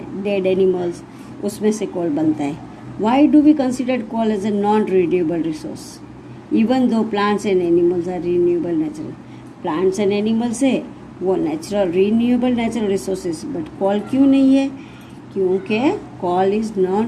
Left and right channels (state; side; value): identical; both; correlation 1.00